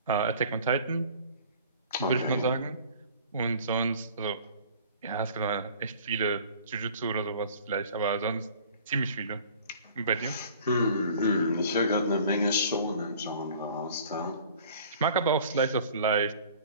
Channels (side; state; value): both; inverted; correlation -0.48